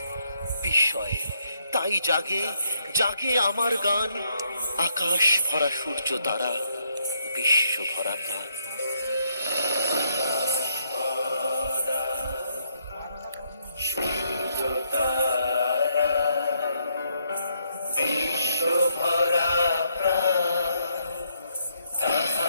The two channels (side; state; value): both; inverted; correlation -0.74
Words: বিস্ময়ে তাই জাগে জাগে আমার গান, আকাশ ভরা সূর্য তারা, বিশ্ব ভরা প্রাণ। সূর্য তারা, বিশ্ব ভরা প্রাণ,